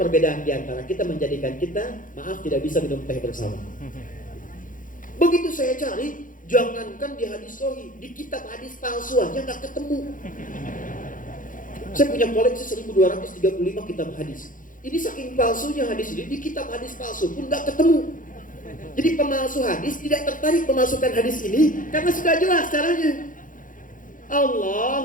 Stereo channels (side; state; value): right; late; 0.39 ms